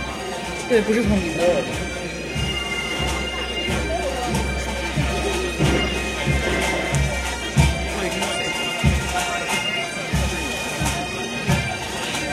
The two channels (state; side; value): identical; both; correlation 1.00